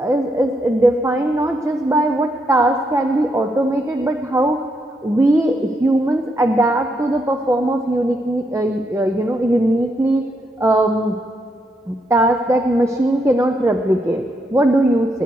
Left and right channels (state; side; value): normal; both; correlation 0.79